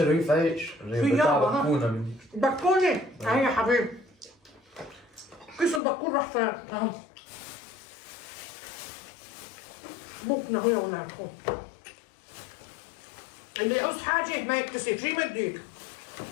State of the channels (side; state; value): right; drops out; at 5.8 s